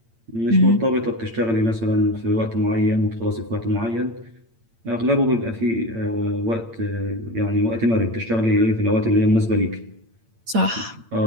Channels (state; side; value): late; left; 8.8 ms